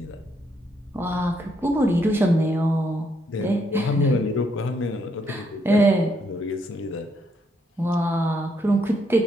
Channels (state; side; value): normal; both; correlation 0.75